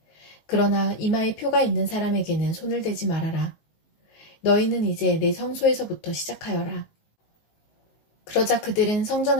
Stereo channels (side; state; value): right; late; 19 ms